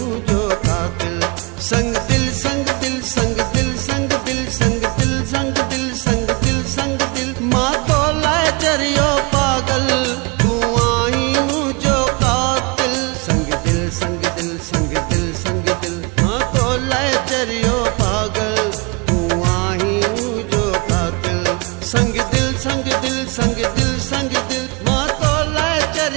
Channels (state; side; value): quieter; left; 29.5 dB